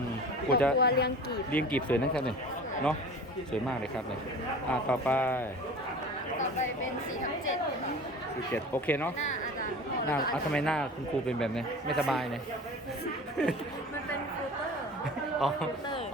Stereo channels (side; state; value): both; normal; correlation 0.39